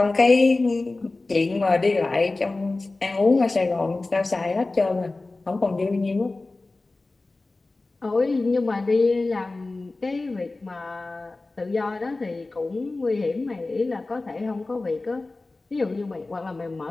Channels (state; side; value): quieter; right; 3.3 dB